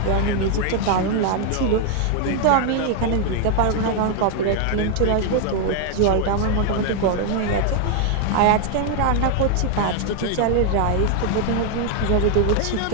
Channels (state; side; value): different; both; correlation 0.00